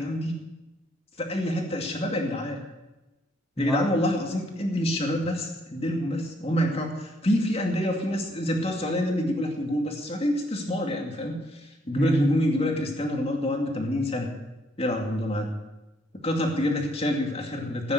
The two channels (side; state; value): both; normal; correlation 0.69